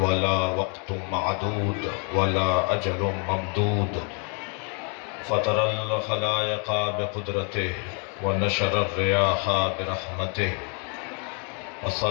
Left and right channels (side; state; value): right; quieter; 37.4 dB